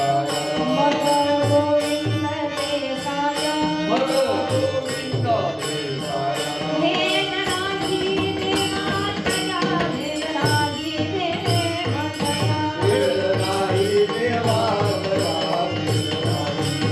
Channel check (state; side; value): identical; both; correlation 1.00